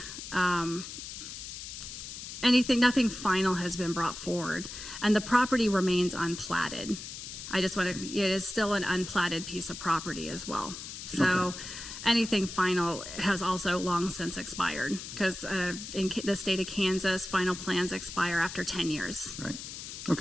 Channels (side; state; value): left; noise; hiss, 10 dB below the sound